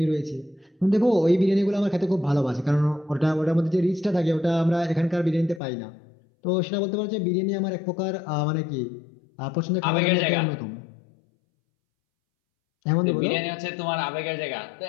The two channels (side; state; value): right; drops out; at 5.6 s